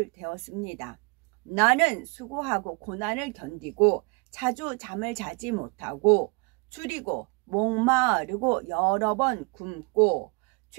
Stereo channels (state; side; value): quieter; left; 30.9 dB